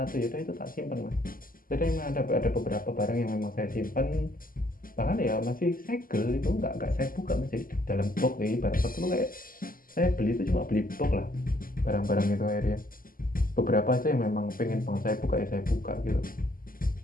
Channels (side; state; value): right; late; 0.41 ms